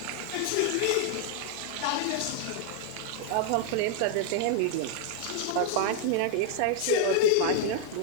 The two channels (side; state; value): both; different; correlation 0.00